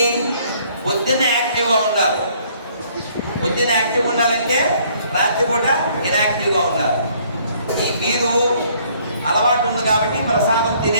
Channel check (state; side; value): inverted; both; correlation -0.62